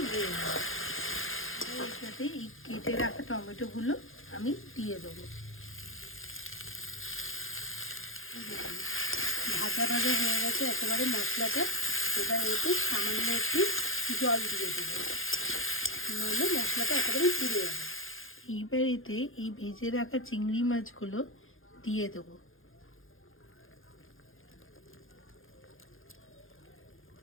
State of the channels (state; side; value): late; right; 0.59 ms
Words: নেড়ে নেব। এর সাথে এই কেটে রাখা টমেটোগুলো আমি দিয়ে দেবো। ভাজা ভাজা হয়ে গেছে একেবারে মশলাটা। এবার এতে সামান্য একটু জল দিয়ে দেবো, নইলে মশলাটা একেবারে পুড়ে যাবে। এইবার এতে এই ভেজে রাখা চিংড়ি মাছগুলো দিয়ে দেবো।